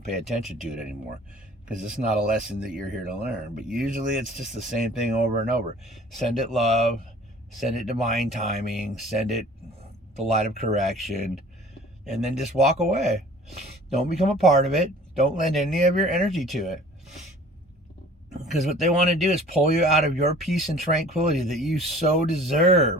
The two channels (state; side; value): normal; both; correlation 0.48